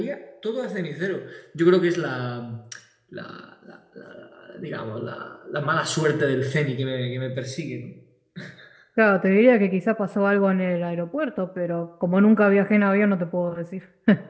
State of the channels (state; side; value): identical; both; correlation 1.00